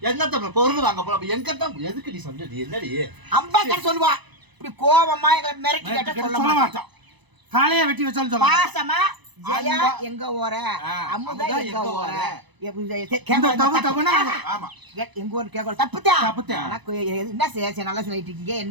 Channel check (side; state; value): left; late; 1.0 ms